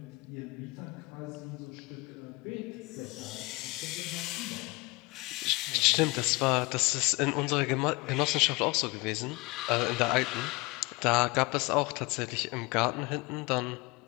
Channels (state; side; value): quieter; right; 24.9 dB